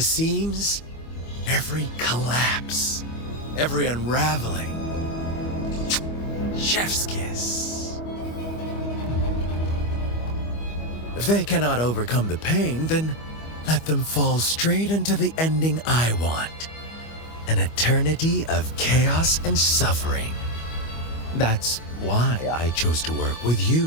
seams. Every collapse, every unraveling. Chef's kiss. If they cannot overcome the pain, then let them fall straight into the ending I want. An eternity of chaos and suffering. That's why I chose to work with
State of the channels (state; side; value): late; right; 25 ms